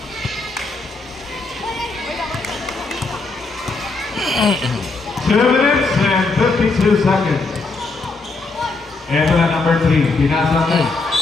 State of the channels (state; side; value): quieter; right; 3.7 dB